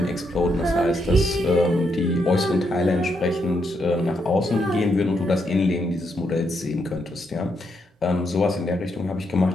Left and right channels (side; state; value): both; normal; correlation 0.79